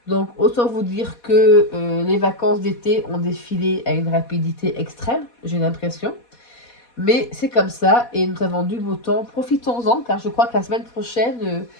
Donc, autant vous dire que les vacances d'été ont défilé à une rapidité extrême, j'ai l'impression. Mais c'est comme ça, et nous avons du beau temps. Profitons-en, car je crois que la semaine prochaine,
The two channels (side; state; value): right; late; 4.2 ms